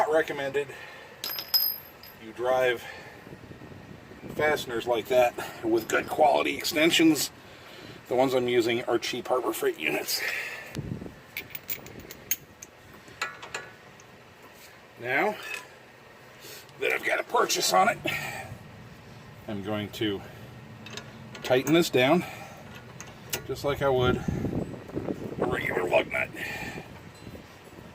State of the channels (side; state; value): both; identical; correlation 1.00